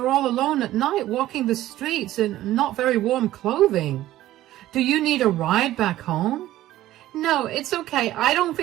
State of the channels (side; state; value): left; quieter; 14.6 dB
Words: all alone at night walking the streets in not very warm clothing. Do you need a ride back home? No, it's okay. I don't